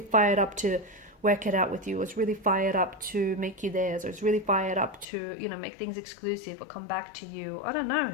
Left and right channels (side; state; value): right; drops out; at 5.1 s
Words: fired up to work it out with you, or it's really fired up to make you theirs, or it's really fired up to, you know, make things exclusive or come back to you. I don't know,